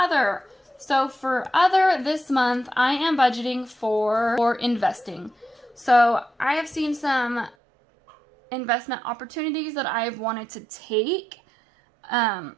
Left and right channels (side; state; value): left; drops out; at 7.6 s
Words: So for other this month, I am budgeting for investing. So I have seen some investment opportunities that I've wanted to take.